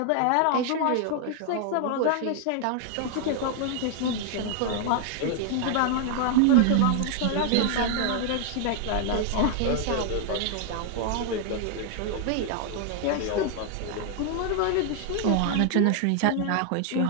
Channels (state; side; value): different; both; correlation 0.00